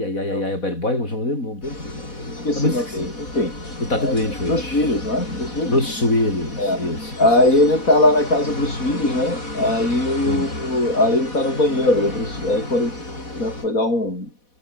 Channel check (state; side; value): late; right; 4.1 ms